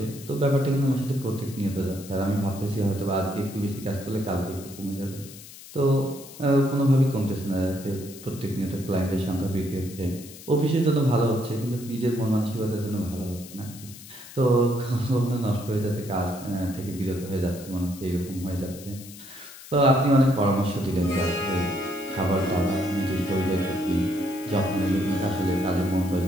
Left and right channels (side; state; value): left; noise; hiss, 17 dB below the sound